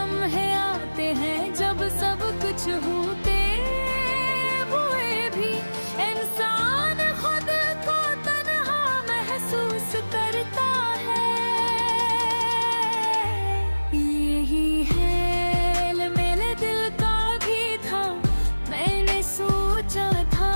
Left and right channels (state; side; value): inverted; both; correlation -1.00